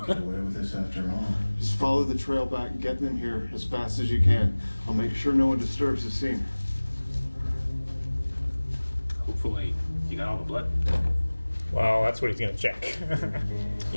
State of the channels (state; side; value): inverted; both; correlation -1.00